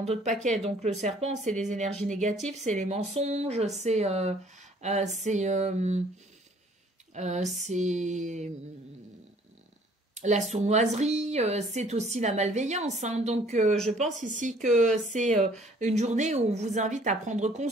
d'autres paquets. Donc le serpent, c'est les énergies négatives, c'est les mensonges, c'est la sournoiserie, c'est aussi la malveillance. Hein. Donc, je pense ici que c'est une journée où on vous invite à prendre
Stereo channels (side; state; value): both; normal; correlation 0.58